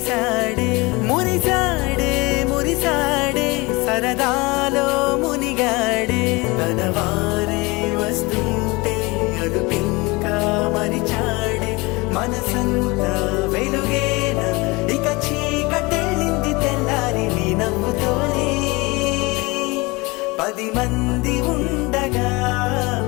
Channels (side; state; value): right; quieter; 24.7 dB